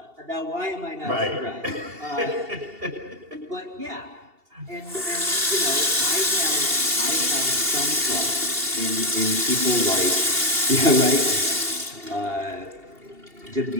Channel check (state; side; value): late; left; 2.7 ms